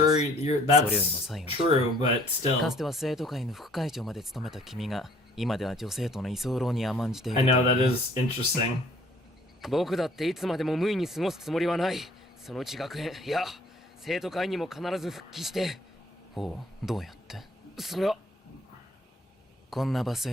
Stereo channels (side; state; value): both; normal; correlation 0.56